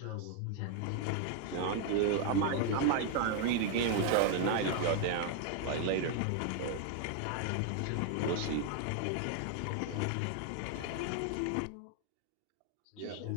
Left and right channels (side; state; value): both; different; correlation 0.00